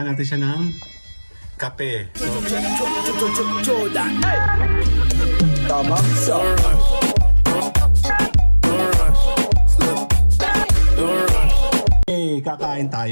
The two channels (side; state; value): both; inverted; correlation -1.00